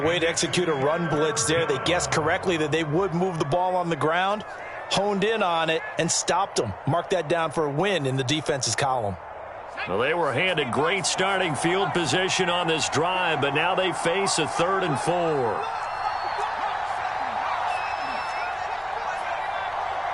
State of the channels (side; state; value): both; identical; correlation 1.00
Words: way to execute a run blitz there. They guessed correctly that they would move the ball on the ground, honed in on it, and stopped them. Mark that down for a win in the defense's column. Well, they were handed great starting field position on this drive, but now they face a 3rd and 4.